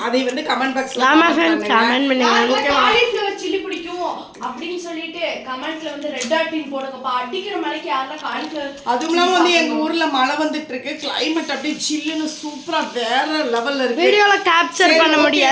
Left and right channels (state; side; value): identical; both; correlation 1.00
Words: அதை வந்து கமெண்ட் பாக்ஸ்ல கமெண்ட் பண்ணுங்க. காலிஃப்ளவர் சில்லி பிடிக்கும் அப்படின்னு சொல்லிட்டு கமெண்ட்ல வந்து ரெட் டாட்டின் போடுங்கப்பா. அடிக்கிற மலைக்கு யாரெல்லாம் காலிஃப்ளவர். அதுவும் இல்லாம வந்து எங்க ஊர்ல மழை வந்துட்டு இருக்கு. கிளைமேட் அப்படியே சில்லுன்னு சூப்பரா வேற லெவல்ல இருக்கு. வீடியோல கேப்சர் பண்ண